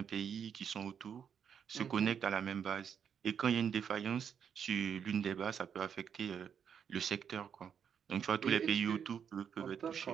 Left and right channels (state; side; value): quieter; left; 7.7 dB